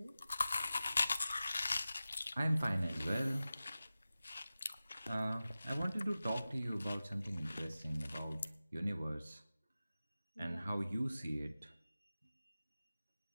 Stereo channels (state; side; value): inverted; both; correlation -0.95